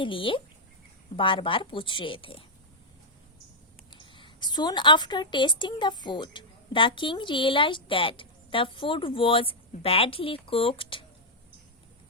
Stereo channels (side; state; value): both; normal; correlation -0.05